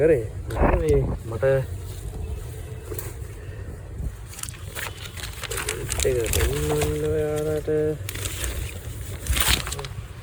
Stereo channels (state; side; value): identical; both; correlation 1.00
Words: මේ මට ඒක දෙන්න ඔයාලට